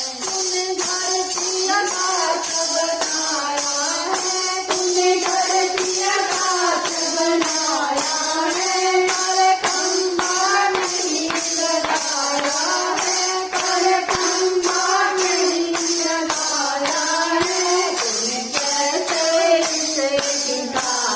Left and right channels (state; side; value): identical; both; correlation 1.00